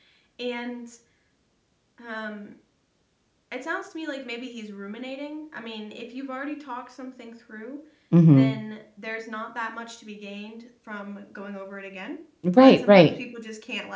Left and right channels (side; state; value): both; identical; correlation 1.00